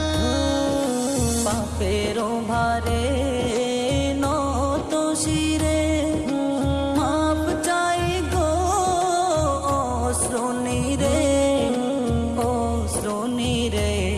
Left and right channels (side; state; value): both; identical; correlation 1.00